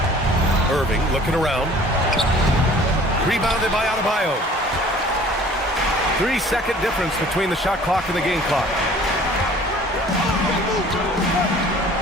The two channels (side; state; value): both; normal; correlation 0.50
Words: Irving looking around. Rebounded by Adebayo. 3-second difference between the shot clock and the game clock.